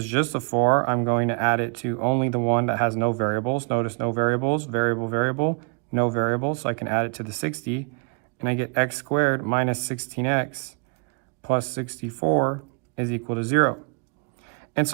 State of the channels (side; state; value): left; quieter; 37.2 dB